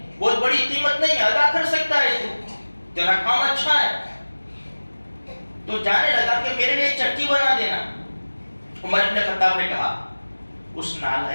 بہت بڑی قیمت نہیں ہے، ادا کر سکتا ہے تو، تیرا کام اچھا ہے. تو جانے لگا کہ میرے لیے ایک چکی بنا دینا. عمر بن خطاب نے کہا، اس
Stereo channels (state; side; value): inverted; both; correlation -1.00